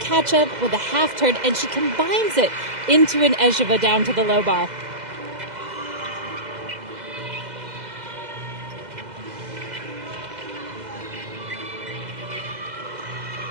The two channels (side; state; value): left; late; 2.0 ms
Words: with a half turn, and she combines it into an Ejeva down to the low bar.